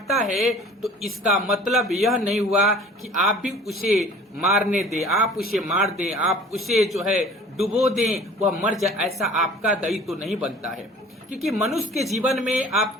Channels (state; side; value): normal; both; correlation 0.46